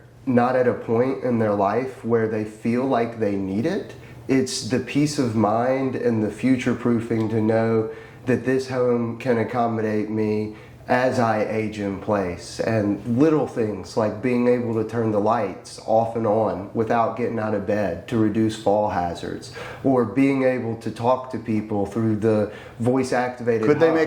not at a point in their life where they feel like they need it. It's the peace of mind and the future proofing to know that this home can accommodate me as I age in place, and little things like being able to turn the lights off and on without getting out of bed to reduce fall hazards, or being able to talk to people through the voice activated Could they hub.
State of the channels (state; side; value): identical; both; correlation 1.00